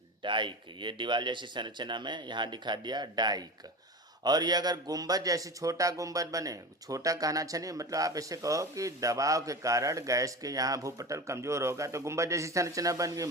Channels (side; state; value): both; normal; correlation 0.28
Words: डाइक, ये दीवार जैसी संरचना में यहाँ दिखा दिया डाइक। और ये अगर गुंबद जैसी छोटा गुंबद बने, छोटा कहना अच्छा नहीं, मतलब आप ऐसे कहो कि दबाव के कारण गैस के यहाँ भूपटल कमजोर होगा तो गुंबद जैसी संरचना बन गई,